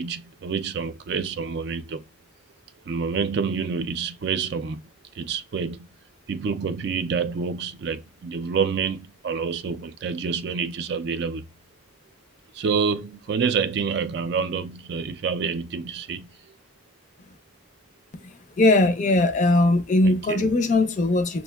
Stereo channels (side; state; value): both; normal; correlation 0.38